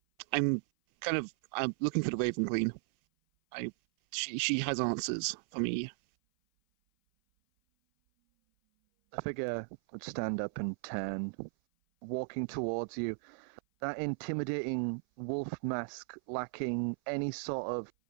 kind of. I'm looking for the Raven Queen. She has answers for me. The figure would stand up and turn, walking towards you. That intimidating wolf mask lacking any sort of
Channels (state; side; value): silent; left; 54 dB below the other